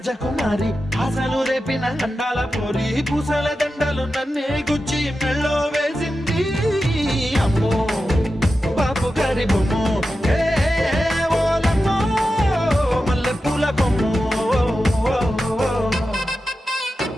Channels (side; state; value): both; normal; correlation 0.91